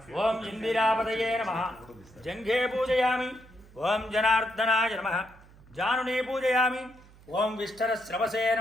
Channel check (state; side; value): noise; right; hum, 24 dB below the sound